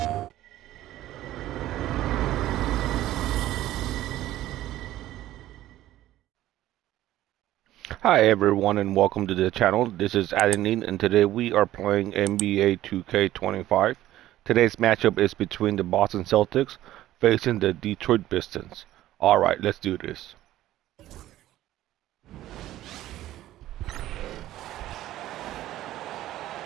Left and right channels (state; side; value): quieter; left; 14.3 dB